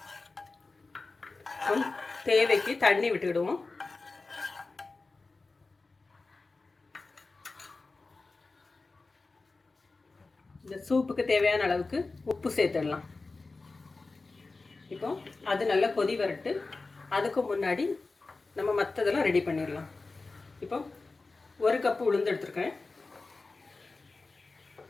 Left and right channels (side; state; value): right; quieter; 3.7 dB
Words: தேவைக்கு தண்ணி விட்டுக்கிடுவோம். இந்த சூப்புக்கு தேவையான அளவுக்கு உப்பு சேர்த்துடலாம். இப்போ அது நல்லா கொதி வரட்டு. அதுக்கு முன்னாடி நம்ம மற்றதெல்லாம் ரெடி பண்ணிடலாம். இப்போ ஒரு கப்பு உளுந்து எடுத்துருக்கேன்.